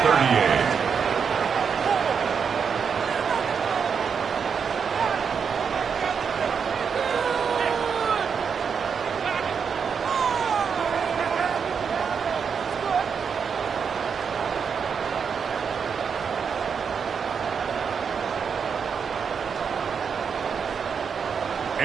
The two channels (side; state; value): left; quieter; 6.4 dB